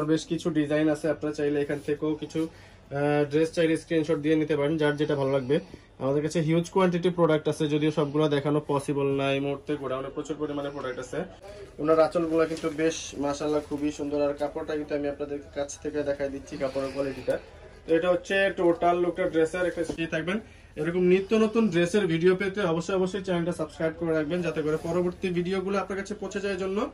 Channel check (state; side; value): identical; both; correlation 1.00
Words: বেশ কিছু ডিজাইন আছে, আপনারা চাইলে এখান থেকেও কিছু ড্রেস চাইলে স্ক্রিনশট দিয়ে নিতে পারেন, যার যেটা ভালো লাগবে। আমাদের কাছে হিউজ কোয়ান্টিটি প্রোডাক্ট আছে, যদিও সবগুলো দেখানো পসিবল না এই মুহূর্তে, গোডাউনে প্রচুর পরিমাণে প্রোডাক্ট আছে। ওনার আঁচলগুলো কিন্তু বেশ মাশাআল্লাহ খুবই সুন্দর, আর কাপড়টা কিন্তু আমি আপনাদের কাছ থেকে দেখাই দিচ্ছি কাপড়ের কোয়ালিটিটা। তো এটা হচ্ছে টোটাল লুকটা ড্রেসের একটা সাথে থাকবেন। এরকম নিত্য নতুন ড্রেসের ভিডিও পেতে অবশ্যই চ্যানেলটা সাবস্ক্রাইব করে রাখবেন, যাতে করে পরবর্তী ভিডিওগুলো আপনার কাছে পৌঁছে যায় জন্য।